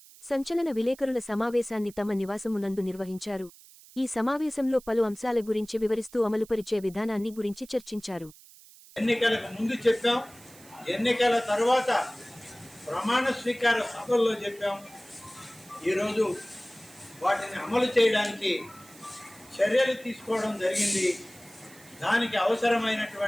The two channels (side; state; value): right; noise; hiss, 22 dB below the sound